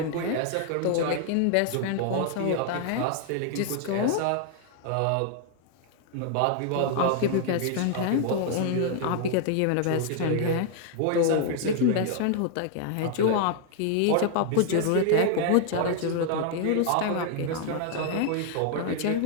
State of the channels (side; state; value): both; different; correlation 0.00